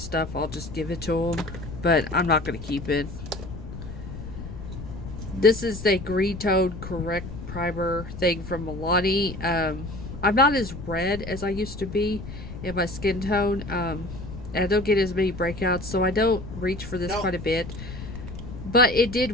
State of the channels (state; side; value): noise; left; rumble, 10 dB below the sound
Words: I'll just give it to them, but I'm not going to keep it. This is the green tone correct primer thing from Milani. I'm not as red as I used to be in my skin tone, and I don't get as many breakouts, so I don't reach for this quite a bit, but it